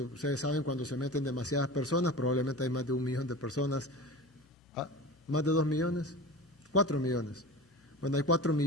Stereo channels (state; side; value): normal; both; correlation 0.33